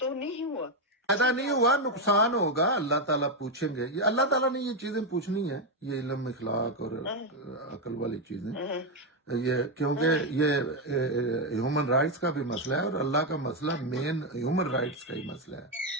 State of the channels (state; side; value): normal; both; correlation 0.06